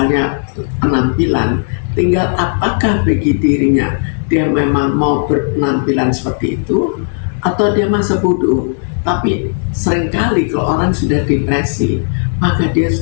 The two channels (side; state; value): right; silent; digital silence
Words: penampilan, tinggal apakah bagi dirinya dia memang mau berpenampilan seperti itu atau dia masa bodoh. Tapi seringkali kalau orang sudah depresi, maka dia